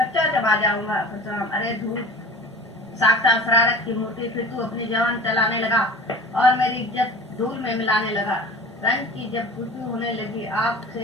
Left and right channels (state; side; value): normal; both; correlation 0.38